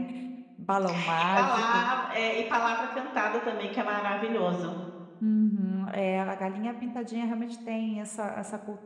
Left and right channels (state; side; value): identical; both; correlation 1.00